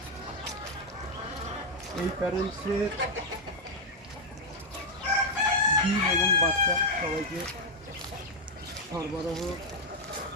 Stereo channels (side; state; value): both; normal; correlation -0.01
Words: এই প্যারেন্টসের ডিম এবং বাচ্চা সবাইকে সরবরাহ